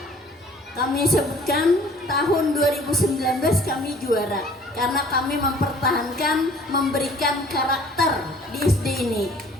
kami sebutkan tahun 2019 kami juara karena kami mempertahankan, memberikan karakter di SD ini.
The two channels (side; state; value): both; normal; correlation 0.52